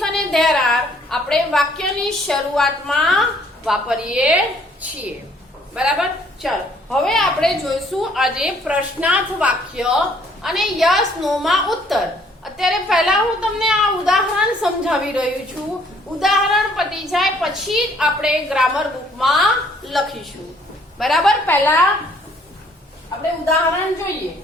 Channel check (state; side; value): normal; both; correlation 0.62